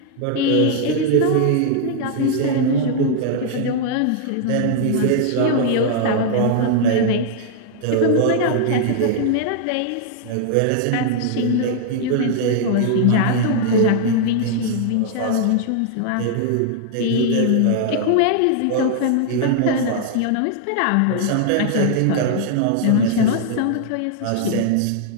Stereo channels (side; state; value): both; different; correlation 0.00